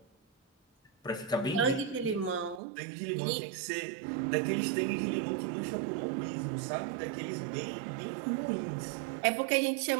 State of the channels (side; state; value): left; drops out; at 2.6 s